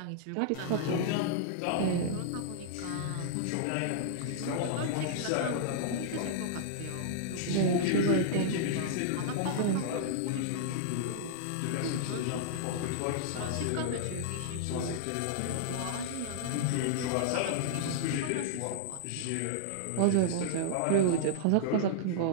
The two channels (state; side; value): different; both; correlation -0.02